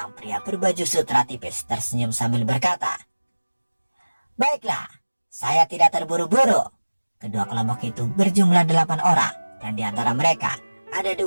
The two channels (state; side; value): inverted; both; correlation -1.00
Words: pria berbaju sutra tipis tersenyum sambil berkata, "Baiklah, saya tidak terburu-buru." Kedua kelompok itu berjumlah 8 orang, dan di antara mereka ada